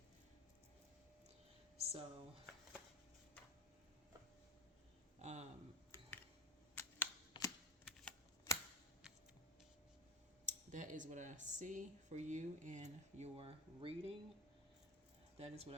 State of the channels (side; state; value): both; normal; correlation 0.24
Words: So, that is what I see for you in your reading. That is what